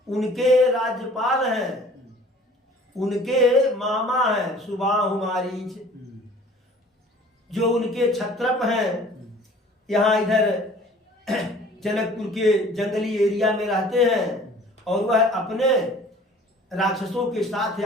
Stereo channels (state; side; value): normal; both; correlation 0.50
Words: उनके राज्यपाल हैं, उनके मामा हैं सुबाहु मारीच, जो उनके छत्रप हैं, यहाँ इधर जनकपुर के जंगली एरिया में रहते हैं, और वह अपने राक्षसों के साथ